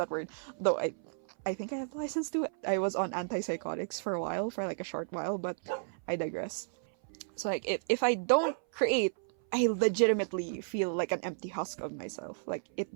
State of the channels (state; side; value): silent; left; 56 dB below the other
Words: word, though I think I have the license to. I was on antipsychotics for a while, for a short while, but I digress. So if I don't create, I legitimately feel like an empty husk of myself. It